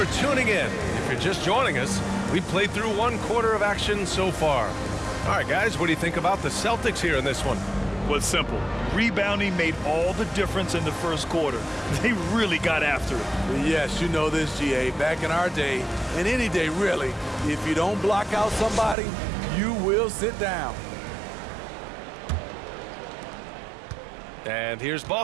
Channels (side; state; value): left; drops out; at 18.9 s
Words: tuning in. If you're just joining us, we've played through 1 quarter of action so far. All right, guys, what do you think about the Celtics here in this one? Well, it's simple. Rebounding made all the difference in the first quarter. They really got after it. Yes, you know this, GA. Back in our day, and any day really, if you don't block out somebody, you will sit down. And here's